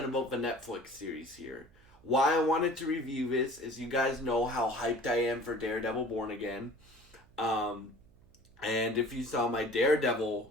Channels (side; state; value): right; noise; hum, 28 dB below the sound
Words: about the Netflix series here. Why I wanted to review this is you guys know how hyped I am for Daredevil Born Again. Um, and if you saw my Daredevil